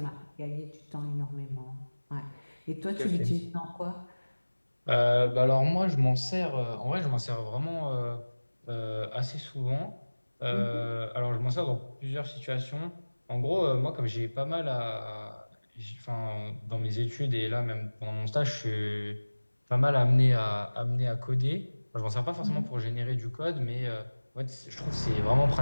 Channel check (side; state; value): both; inverted; correlation -1.00